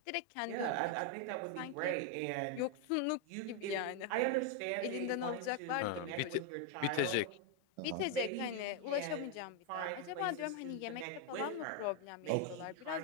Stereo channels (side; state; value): both; different; correlation 0.01